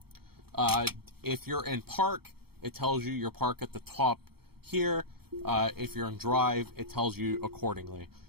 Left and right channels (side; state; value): left; late; 0.95 ms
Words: If you're in park, it tells you your park at the top here. If you're in drive, it tells you accordingly.